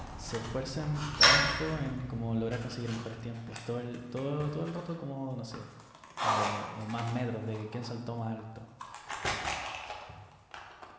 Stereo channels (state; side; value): identical; both; correlation 1.00